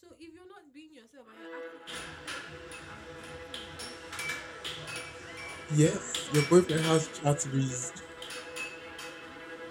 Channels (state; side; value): identical; both; correlation 1.00